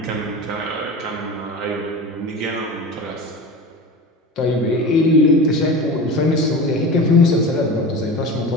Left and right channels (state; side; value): normal; both; correlation 0.31